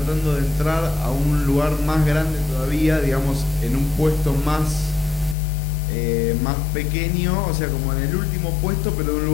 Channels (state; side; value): drops out; right; at 5.4 s